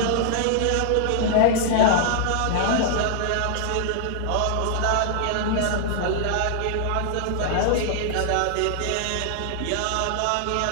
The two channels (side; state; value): both; different; correlation -0.01